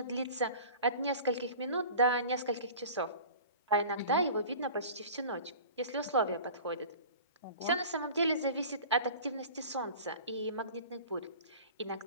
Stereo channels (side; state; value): both; inverted; correlation -0.41